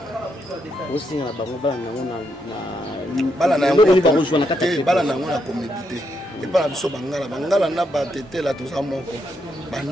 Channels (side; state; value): both; normal; correlation 0.79